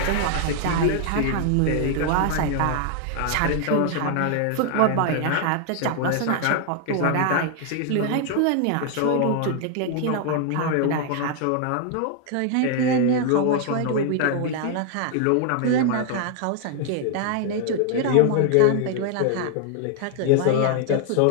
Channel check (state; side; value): different; both; correlation 0.00